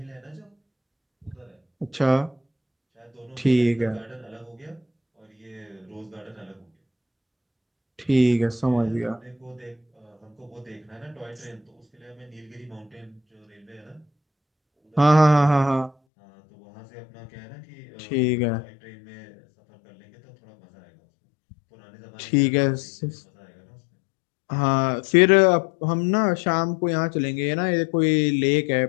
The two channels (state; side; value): drops out; right; at 15.9 s